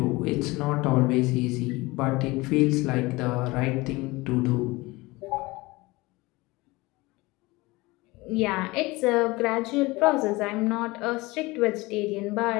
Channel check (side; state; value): right; quieter; 22.1 dB